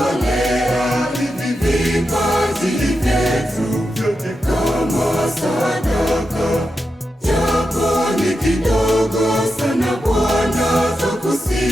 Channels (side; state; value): both; normal; correlation 0.88